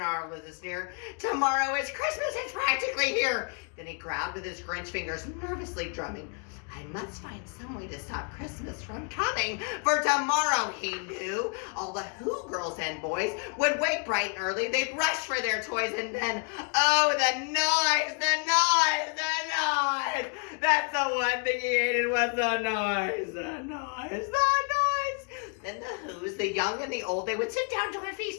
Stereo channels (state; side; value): quieter; right; 38.8 dB